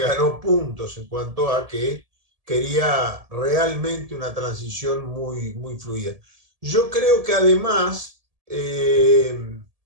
puntos en cuanto a que quería realmente una transición muy, muy fluida. Yo creo que además el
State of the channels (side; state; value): left; late; 1.7 ms